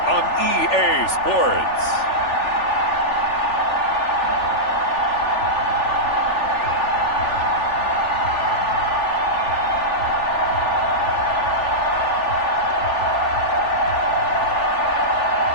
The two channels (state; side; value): late; right; 3.4 ms